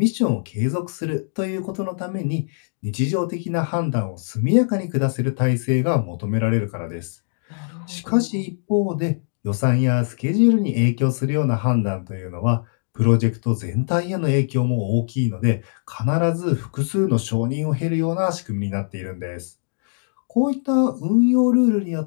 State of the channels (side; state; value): right; silent; digital silence